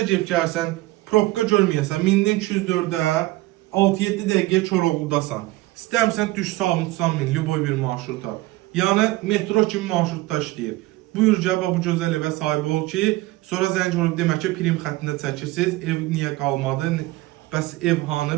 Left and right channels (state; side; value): quieter; left; 18.8 dB